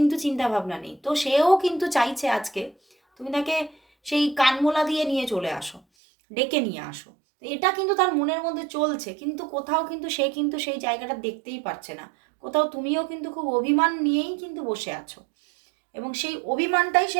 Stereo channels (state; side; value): drops out; left; at 5.8 s